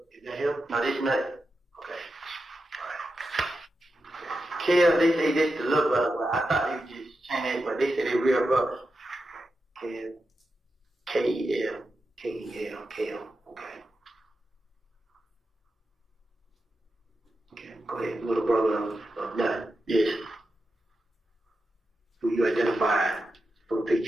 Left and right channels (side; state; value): both; normal; correlation 0.89